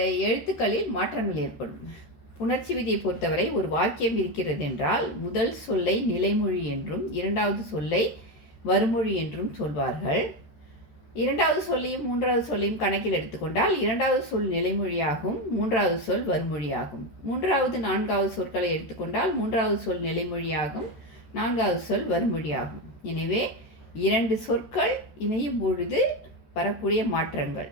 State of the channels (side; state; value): right; late; 13 ms